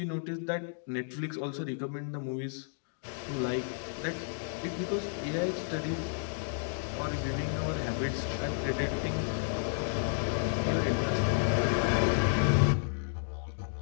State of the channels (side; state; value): right; silent; digital silence